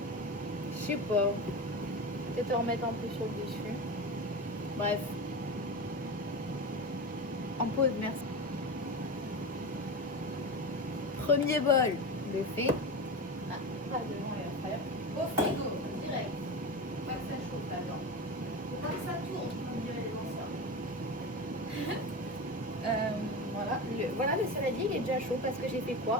je sais pas. Peut-être en remettre un peu sur le dessus. Bref. En pause, merci. Premier bol de fait. Ah, pas devant les affaires. Au frigo, direct. Faut pas que ça chauffe là-dedans. Faut pas que ça tourne, comme diraient les anciens. Voilà, le saladier il est déjà chaud parce que j'ai fait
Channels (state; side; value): normal; both; correlation 0.24